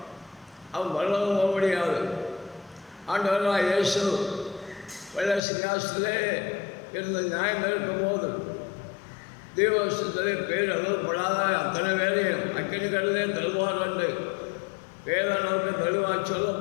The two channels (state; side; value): drops out; right; at 5.4 s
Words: அவன் வரவும் போக முடியாது. ஆண்டவராக இயேசு வெள்ள சிங்காசனத்திலே இருந்து நியாயம் இருக்கும்போது தேவசத்திலே பேர் எழுதப்படாத அத்தனை வேலையும் அக்கினி கடலே தருவார் என்று வேதனுக்கு தெளிவாக